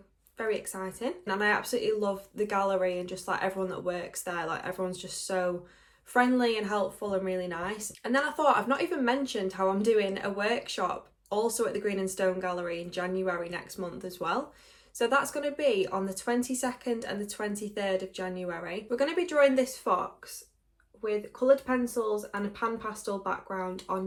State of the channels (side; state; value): both; identical; correlation 1.00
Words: very exciting. And I absolutely love the gallery and just like everyone that works there. Like everyone's just so friendly and helpful and really nice. And then I thought, I've not even mentioned how I'm doing a workshop also at the Green and Stone Gallery in January next month as well. So that's going to be on the 22nd and the 23rd of January. We're going to be drawing this fox with coloured pencils and a pan pastel background